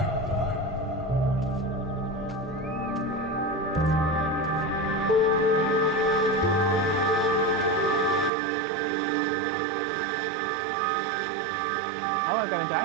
Oh, I've got a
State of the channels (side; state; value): left; drops out; at 8.3 s